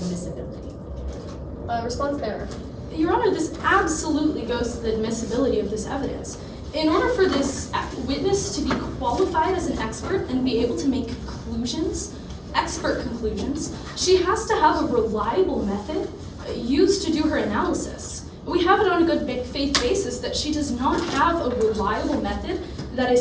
Response there. Your Honor, this absolutely goes to the admissibility of this evidence. In order for this witness to be qualified as an expert and be able to make conclusions expert conclusions, she has to have a reliable method used to do her analysis. We have it on a good faith basis that she does not have a reliable method that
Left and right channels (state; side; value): identical; both; correlation 1.00